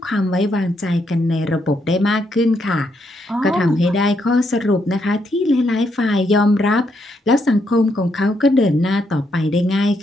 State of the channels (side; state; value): both; normal; correlation 0.77